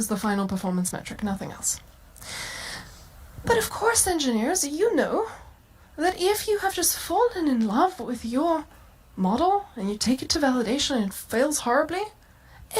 the final performance metric, nothing else. But of course, engineers, you know that if you have just fallen in love with your model and you take it to validation and it fails horribly,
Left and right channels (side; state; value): both; identical; correlation 1.00